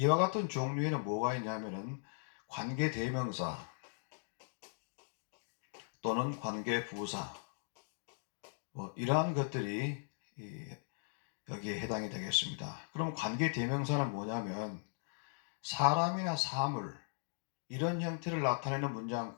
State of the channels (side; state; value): right; silent; digital silence